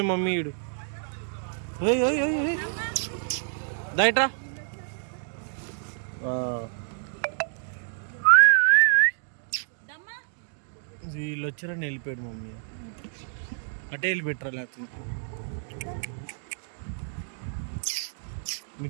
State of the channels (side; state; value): left; silent; digital silence